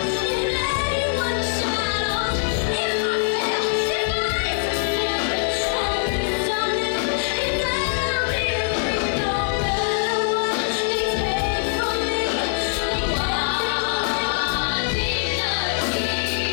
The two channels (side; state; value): right; silent; 56 dB below the other